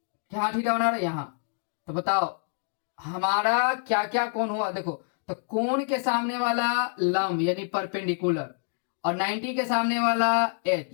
क्या थीटा बना रहा यहां, तो बताओ हमारा क्या क्या कोण हुआ, देखो तो कोण के सामने वाला लंब यानी परपेंडिकुलर, और 90 के सामने वाला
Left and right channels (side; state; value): right; silent; digital silence